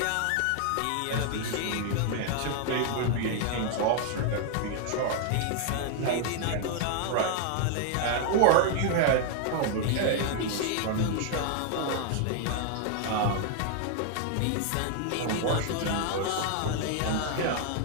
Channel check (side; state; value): both; different; correlation 0.00